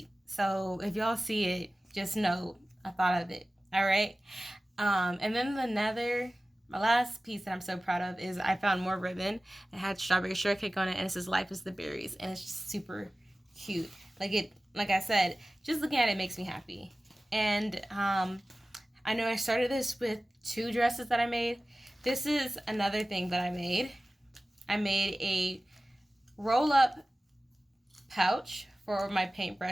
So if y'all see it, just know I thought of it. All right. And then my last piece that I'm so proud of is I found more ribbon. It had strawberry shortcake on it, and it says "Life is the berries," and it's just super cute. Like I said, just looking at it makes me happy. And I know I started this with 2 dresses that I made. This is another thing that I made. I made a roll-up pouch for my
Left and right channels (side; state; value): both; normal; correlation 0.97